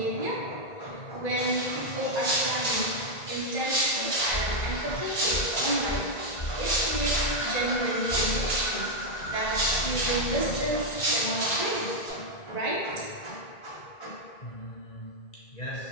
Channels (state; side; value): late; right; 1.9 ms